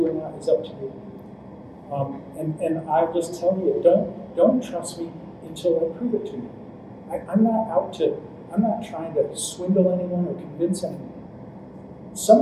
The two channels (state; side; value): identical; both; correlation 1.00